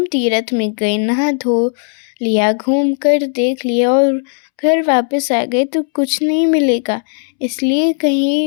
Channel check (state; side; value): silent; right; 69 dB below the other